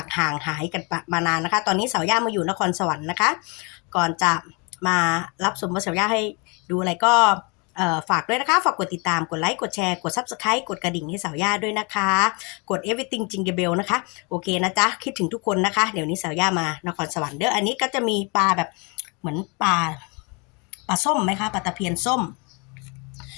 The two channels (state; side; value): quieter; right; 31.1 dB